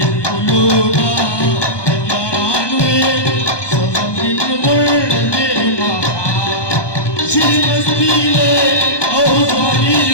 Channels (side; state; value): right; late; 1.2 ms